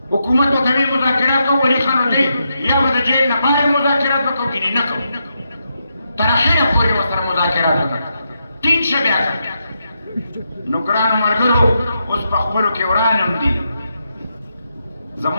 حکومت ورته ویل مذاکرات کوو ولي خان ورته یا به د جیل نه بهر مذاکرات به کوو ګینې نه کوو تر اخره پورې ورسره مذاکرات وکړه ټینګ شه بیا نو ګرانو ملګرو اوس په خپلو کې وران هم دي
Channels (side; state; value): both; inverted; correlation -0.83